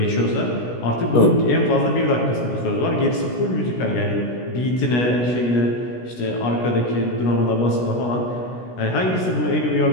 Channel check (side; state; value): right; late; 16 ms